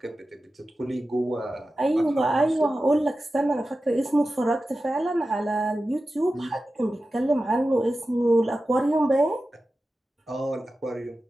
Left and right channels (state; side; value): normal; both; correlation 0.94